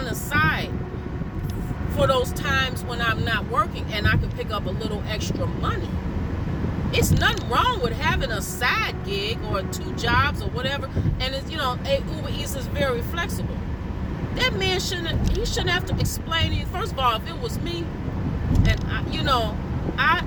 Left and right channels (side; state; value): both; identical; correlation 1.00